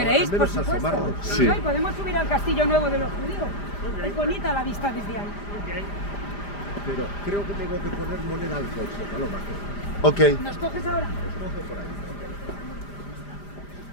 al por menos supuesto. asomarnos. Sí. Ay, podemos subir al castillo nuevo de los judíos. Ok. Es bonita la vista desde ahí. Ok. Pero creo que tengo que poner moneda al coche, Paloma. Ok. ¿Nos coges ahora? Coge por ahí.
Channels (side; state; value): right; late; 5.0 ms